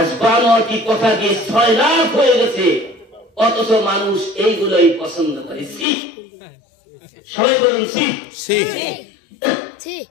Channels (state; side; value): drops out; right; at 5.9 s